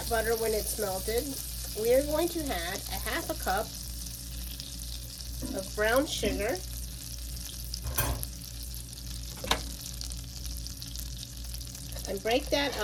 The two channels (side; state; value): both; identical; correlation 1.00